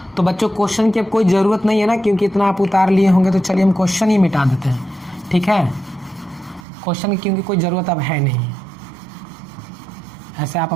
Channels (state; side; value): drops out; left; at 6.7 s